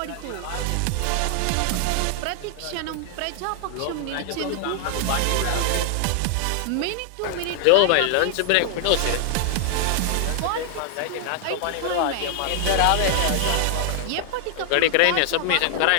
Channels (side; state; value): both; different; correlation 0.00